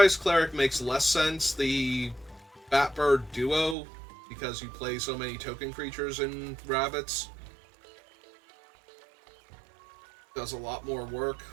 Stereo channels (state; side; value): drops out; left; at 3.8 s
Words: Cleric makes less sense. The Batbird duo, because you play so many token creatures in rabbits, does a lot more work,